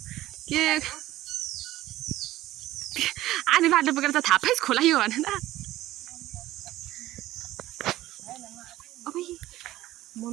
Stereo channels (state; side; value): quieter; left; 15.6 dB